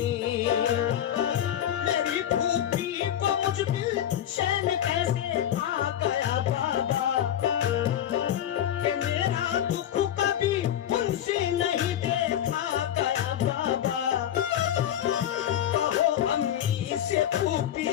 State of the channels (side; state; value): right; quieter; 10.9 dB